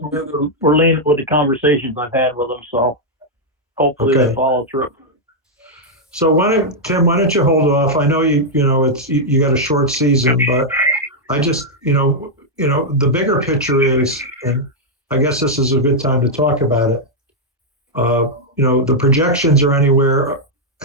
we're leaning with the conversations I've had with them. So hopefully Okay. they follow through. So Tim, why don't you hold off? I know you got a short season, but I just, the bigger picture is, and I guess this is a good time to talk about it. The projections are anywhere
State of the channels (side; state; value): both; normal; correlation -0.03